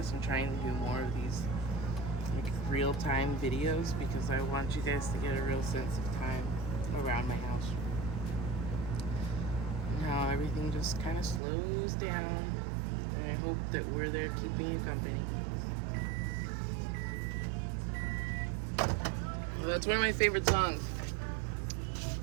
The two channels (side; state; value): left; drops out; at 11.4 s